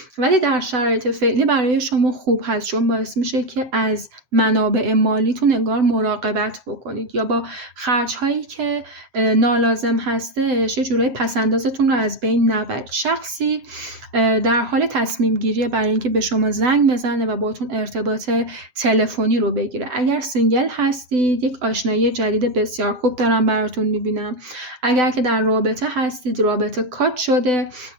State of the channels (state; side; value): late; left; 7.5 ms